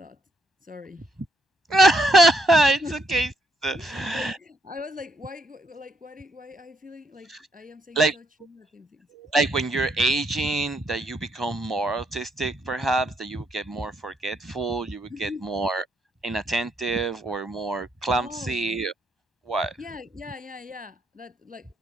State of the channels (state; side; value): normal; both; correlation 0.74